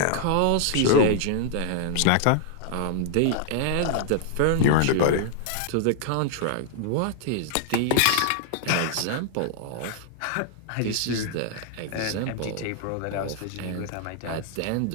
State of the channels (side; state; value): both; different; correlation -0.01